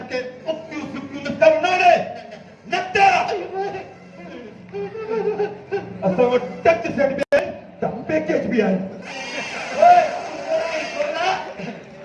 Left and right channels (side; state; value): both; identical; correlation 1.00